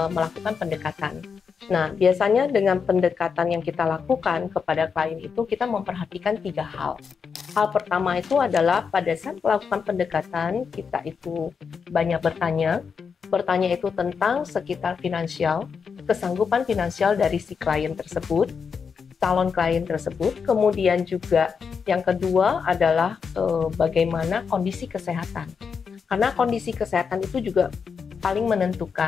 melakukan pendekatan. Nah, biasanya dengan pendekatan yang kita lakukan kepada klien itu kita memperhatikan 3 hal. Hal pertama itu adalah pada saat melakukan pendekatan kita itu banyak bertanya itu tentang sekitar finansial, kesanggupan finansial dari si klien tersebut, calon klien tersebut. Kemudian juga yang kedua adalah bagaimana kondisi kesehatan. Karena kondisi kesehatan itu juga paling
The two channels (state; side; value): quieter; right; 6.0 dB